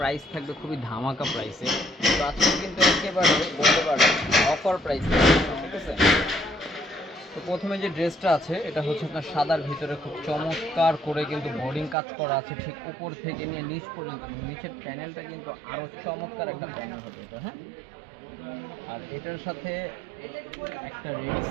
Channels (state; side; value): drops out; left; at 12.0 s